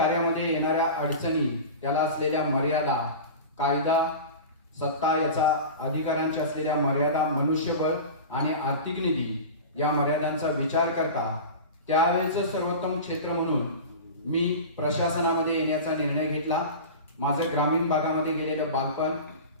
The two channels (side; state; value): both; inverted; correlation -0.31